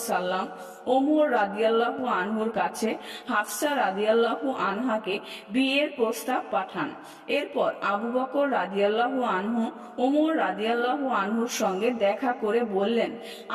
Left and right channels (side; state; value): both; identical; correlation 1.00